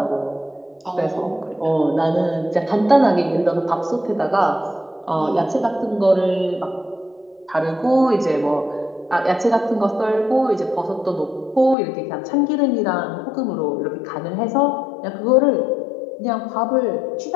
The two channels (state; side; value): drops out; right; at 11.8 s